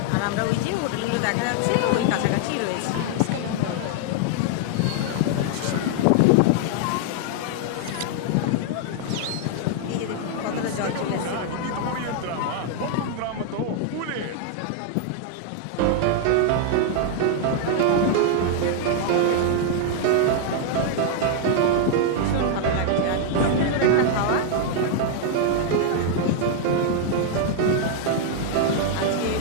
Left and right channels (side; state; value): both; different; correlation 0.00